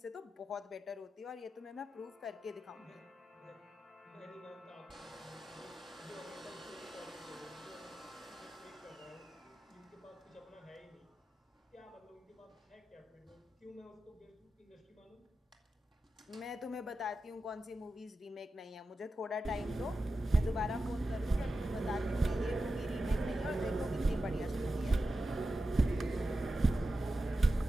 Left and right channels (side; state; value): both; normal; correlation 0.92